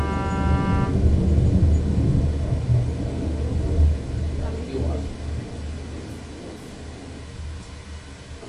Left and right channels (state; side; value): identical; both; correlation 1.00